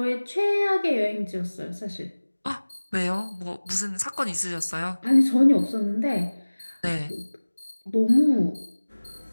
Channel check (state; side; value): inverted; both; correlation -1.00